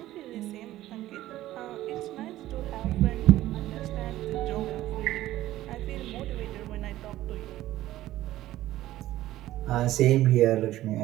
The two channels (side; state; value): left; quieter; 14.9 dB